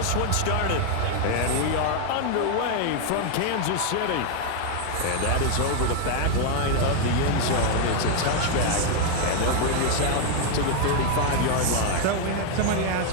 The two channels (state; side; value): different; both; correlation 0.01